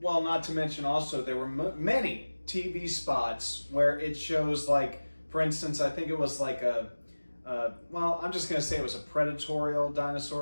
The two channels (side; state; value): both; inverted; correlation -1.00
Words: Well, not to mention also there were many TV spots where it shows, like, for instance, I think it was like I'm just going to say it was a predatorial